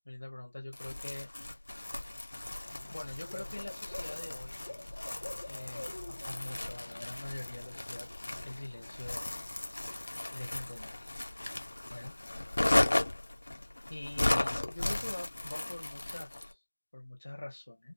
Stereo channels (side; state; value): both; inverted; correlation -1.00